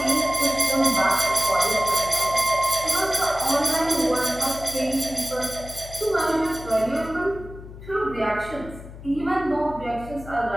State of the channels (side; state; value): left; noise; hum, 15 dB below the sound